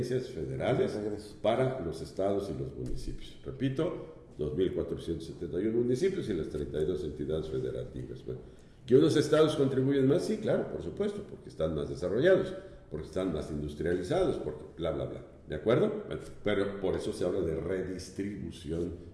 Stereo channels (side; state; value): both; identical; correlation 1.00